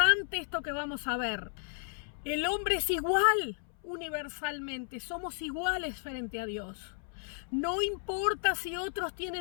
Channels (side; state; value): right; silent; 56 dB below the other